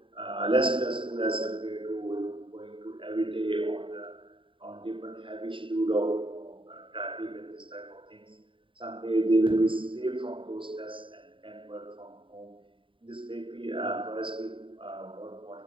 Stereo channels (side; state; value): left; late; 0.25 ms